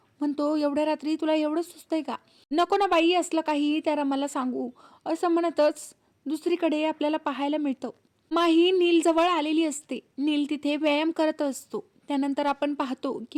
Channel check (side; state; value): both; identical; correlation 1.00